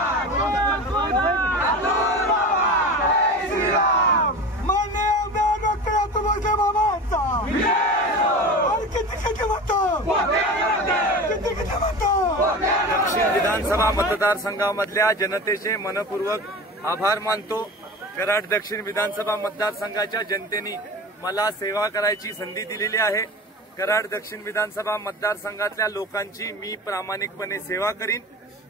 मान्य डॉक्टर अतुल बाबांचा दक्षिण विधानसभा मतदारसंघामधल्या जनतेचे मनपूर्वक आभार मानतो। कराड दक्षिण विधानसभा मतदारसंघाच्या जनतेने मला सेवा करायची संधी दिलेली आहे। कराड दक्षिण विधानसभा मतदारसंघातल्या लोकांची मी प्रामाणिकपणे सेवा करीन।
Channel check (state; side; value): normal; both; correlation 0.32